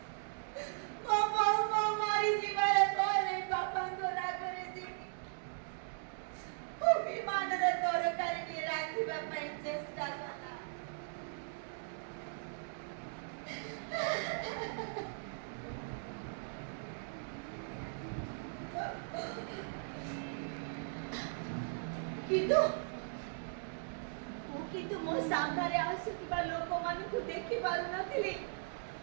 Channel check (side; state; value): left; silent; digital silence